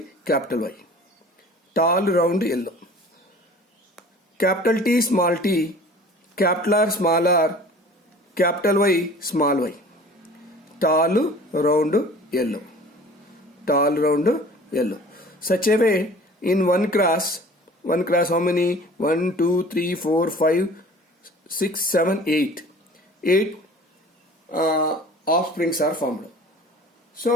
Tall round yellow. Capital T, capital R, small r, capital Y. Tall round yellow. Such a way, in one class, how many? 1, 2, 3, 4, 5, 6, 7, 8. 8 offsprings are formed.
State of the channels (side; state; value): both; normal; correlation 0.45